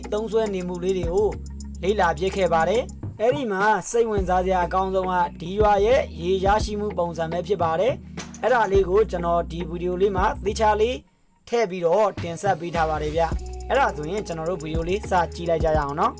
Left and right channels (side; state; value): both; identical; correlation 1.00